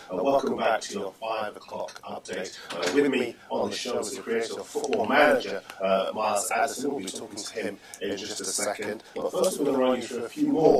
Welcome back to your 5 o'clock update. With me on the show is the creator of Football Manager, Miles Jacobson. We'll be talking to him in just a second. But first we're going to run you through a few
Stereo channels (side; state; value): both; identical; correlation 1.00